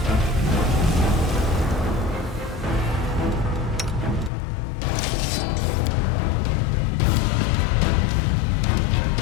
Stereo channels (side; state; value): right; drops out; at 4.3 s